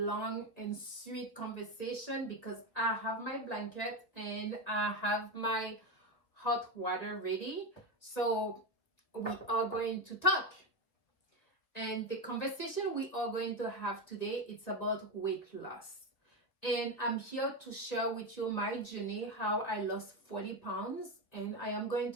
and sweet conversation because I have my blanket and I have my hot water ready. So we are going to talk. And the conversation we are going to have today, it's about weight loss. And I'm here to share with you my journey, how I lost 40 pounds. And I am going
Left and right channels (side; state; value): right; late; 1.6 ms